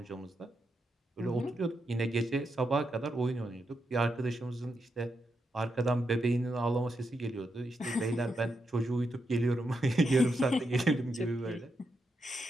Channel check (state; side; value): normal; both; correlation 0.84